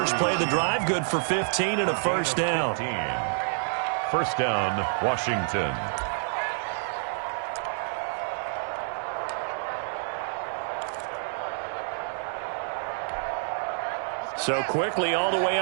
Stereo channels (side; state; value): left; silent; digital silence